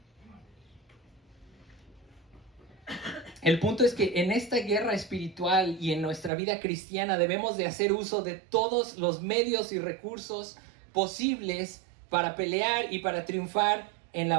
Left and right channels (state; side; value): drops out; left; at 6.3 s